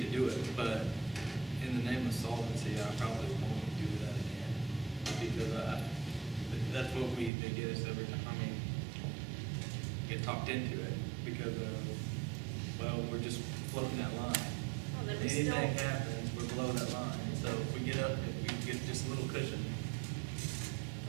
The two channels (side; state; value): left; drops out; at 7.3 s